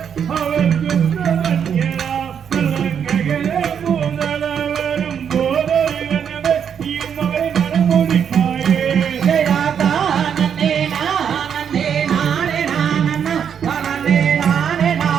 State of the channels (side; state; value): left; quieter; 7.9 dB